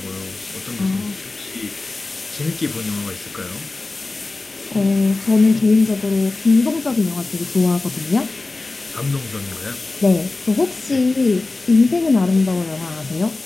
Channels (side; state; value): right; quieter; 3.3 dB